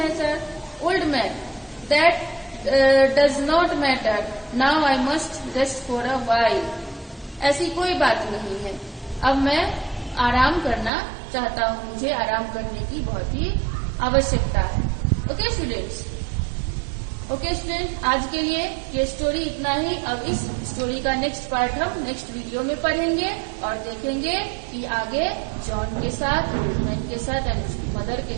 sir. Old man, that does not matter, now I must rest for a while. ऐसी कोई बात नहीं है, अब मैं आराम करना चाहता हूँ, मुझे आराम करने की बहुत ही आवश्यकता है। ओके स्टूडेंट्स, आज के लिए ये स्टोरी इतना ही। अब इस स्टोरी का नेक्स्ट पार्ट हम नेक्स्ट वीडियो में पढ़ेंगे और देखेंगे कि आगे जॉन के साथ, ओल्ड मैन के साथ एंड उसकी मदर के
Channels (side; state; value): left; drops out; at 10.9 s